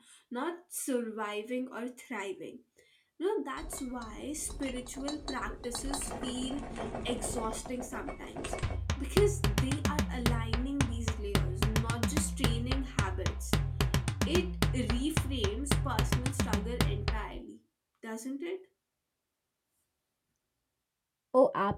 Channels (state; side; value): identical; both; correlation 1.00